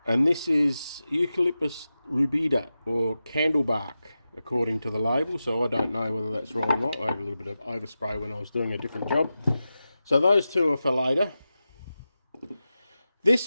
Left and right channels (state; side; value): inverted; both; correlation -0.93